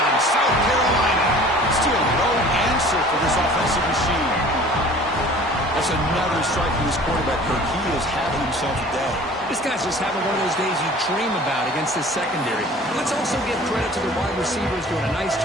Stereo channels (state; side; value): normal; both; correlation 0.47